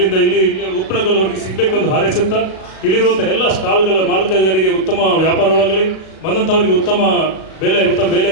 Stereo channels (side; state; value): right; late; 37 ms